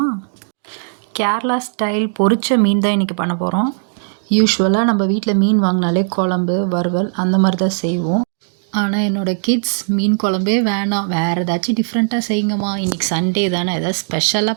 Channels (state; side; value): silent; left; digital silence